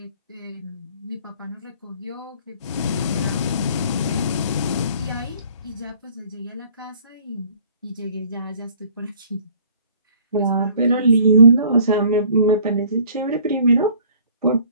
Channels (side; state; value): both; inverted; correlation -0.54